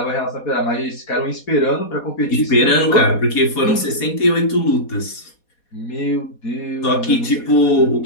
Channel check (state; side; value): late; right; 4.2 ms